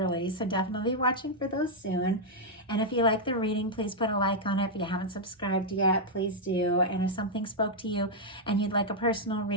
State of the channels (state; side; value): normal; both; correlation -0.03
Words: So definitely be watching for those soon. And if you like the reading, please put a like on it. If you haven't subscribed yet, please do. And if something spoke to you and you'd like a personal